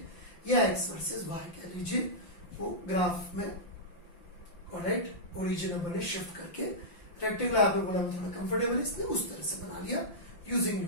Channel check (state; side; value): late; right; 5.8 ms